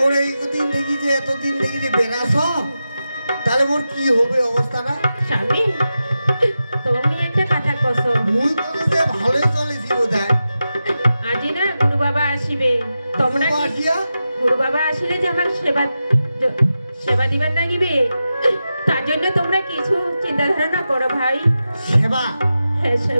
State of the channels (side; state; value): both; inverted; correlation -0.91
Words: এইদিন দেখি যে এতদিন দেখি যে বেরাস, তাহলে মোর কি হবে অবস্থাটা? স্বামী, তুমি একটা কথা কছো, মুই বলে যে ভালোই চলেছি বোধহয়। আজি না গুরু বাবা আসিবে, তোমরা গুরু বাবা আসিলে যে আমার সেবা দিবার লাগিবে, তার জন্য তোমরা কিছু চিন্তা ধারণা করো ভাই। সেবা? হ্যাঁ